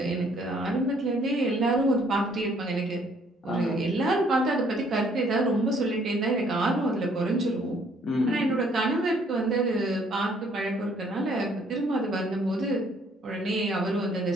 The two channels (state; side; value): normal; both; correlation 0.63